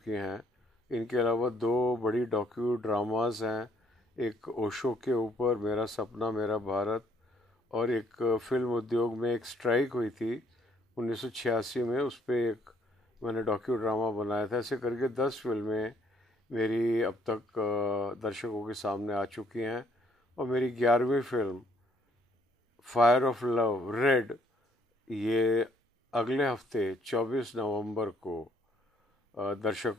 हैं। इनके अलावा दो बड़ी डॉक्यू ड्रामास हैं, एक ओशो के ऊपर मेरा सपना मेरा भारत, और एक फिल्म उद्योग में एक स्ट्राइक हुई थी 1986 में, उस पर एक मैंने डॉक्यू ड्रामा बनाया था। ऐसे करके 10 फिल्में मेरी अब तक दर्शकों के सामने आ चुकी हैं। और मेरी 11वीं film fire of love red, ये अगले हफ्ते 24 नवंबर को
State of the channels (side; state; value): both; normal; correlation 0.67